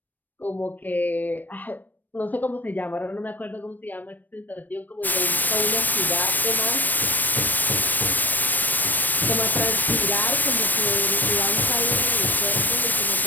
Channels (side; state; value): right; late; 0.088 ms